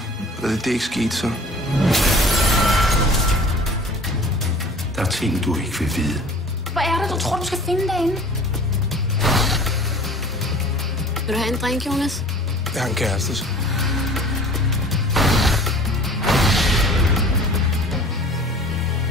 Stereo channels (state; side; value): normal; both; correlation 0.46